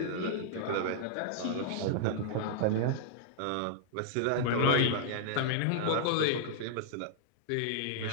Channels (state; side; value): different; both; correlation -0.01